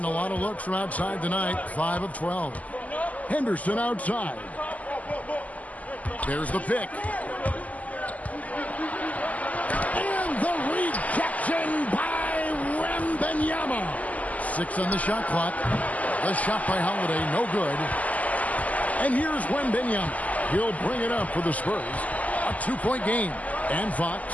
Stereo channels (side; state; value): right; late; 0.075 ms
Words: a lot of looks from outside tonight. 5 of 12. Henderson outside. There's the pick. And the rejection by Wembanyama. 6 on the shot clock. The shot by Holiday, no good. And here's Wembanyama. He'll bring it up for the Spurs. A 2-point game. And